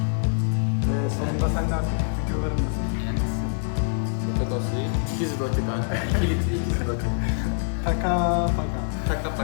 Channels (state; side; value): silent; right; 58 dB below the other